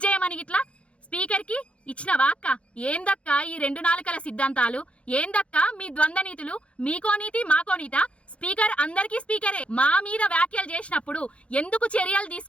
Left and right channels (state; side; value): late; right; 0.061 ms